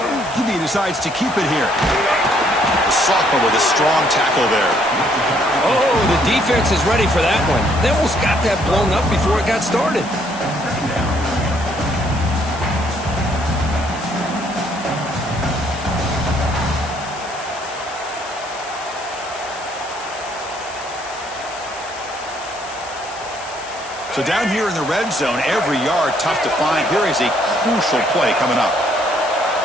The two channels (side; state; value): left; noise; hiss, 16 dB below the sound